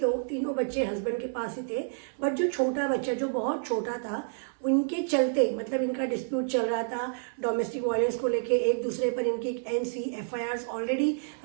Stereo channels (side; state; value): left; silent; digital silence